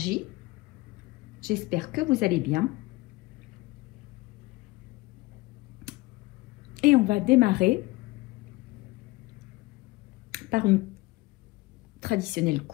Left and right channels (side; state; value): right; quieter; 21.3 dB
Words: J'espère que vous allez bien. Et on va démarrer par une traditionnelle